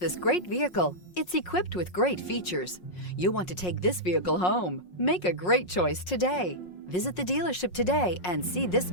great vehicle. It's equipped with great features. You'll want to take this vehicle home. Make a great choice today. Visit the dealership today and see this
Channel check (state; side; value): late; right; 5.5 ms